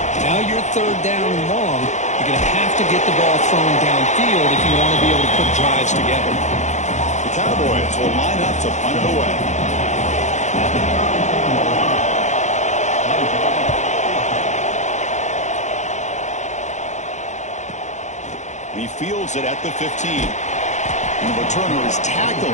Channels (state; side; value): late; right; 0.34 ms